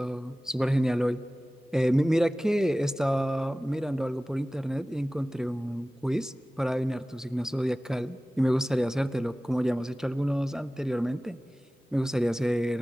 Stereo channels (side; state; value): both; normal; correlation 0.97